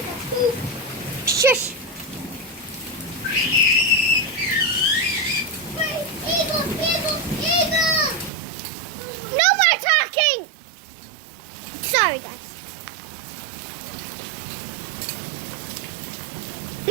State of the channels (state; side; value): drops out; left; at 8.3 s